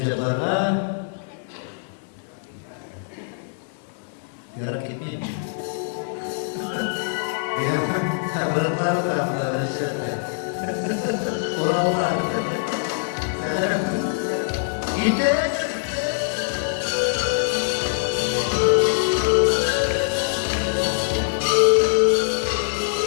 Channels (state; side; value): silent; right; digital silence